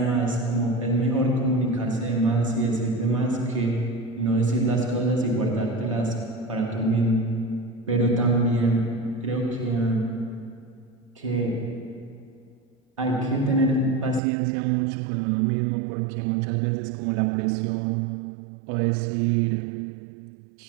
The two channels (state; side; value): drops out; left; at 14.2 s